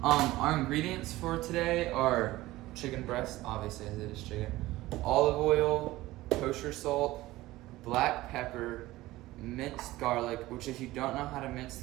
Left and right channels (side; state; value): left; quieter; 17.6 dB